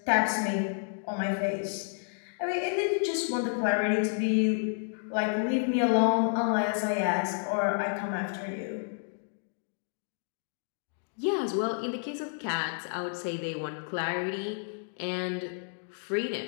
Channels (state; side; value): silent; right; digital silence